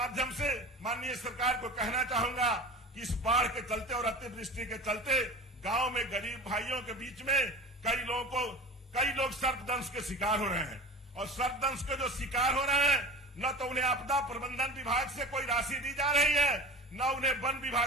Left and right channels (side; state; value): both; normal; correlation 0.35